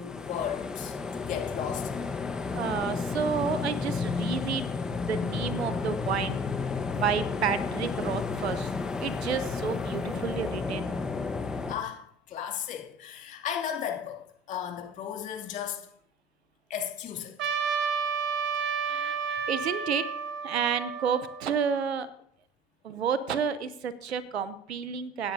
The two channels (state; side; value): normal; both; correlation 0.47